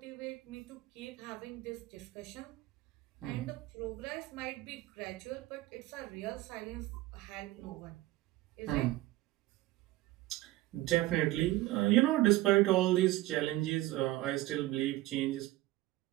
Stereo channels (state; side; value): quieter; left; 17.4 dB